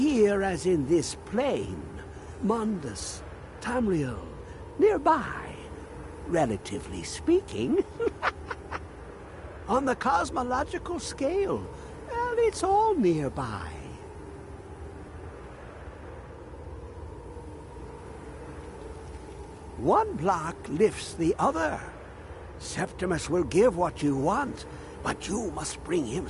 as in this plain, Mundus, Tamriel, nearby, relatively speaking. On the cosmological scale, well, it's all nearby. One block lifts the other. Septimus will give what you want, but you must bring him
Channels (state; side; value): identical; both; correlation 1.00